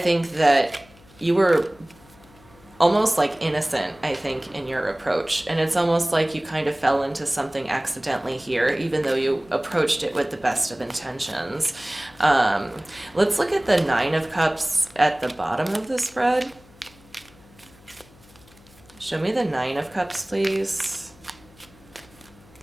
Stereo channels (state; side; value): noise; left; hum, 26 dB below the sound